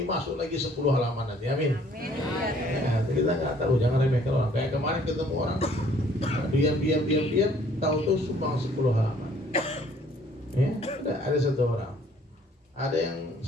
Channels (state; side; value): normal; both; correlation 0.59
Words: masuk lagi 10 halaman nanti. Amin. Ya, kita nggak tahu, jangan remehkan orang. Kayak kemarin ketemu orang, diam, tahu-tahu sumbang 10 halaman. Ya, ada satu orang. Ada yang